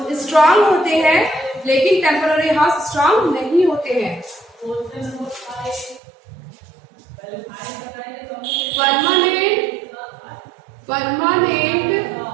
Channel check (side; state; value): left; drops out; at 6.0 s